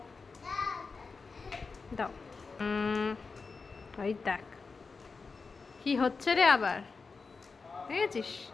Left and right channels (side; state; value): right; quieter; 4.5 dB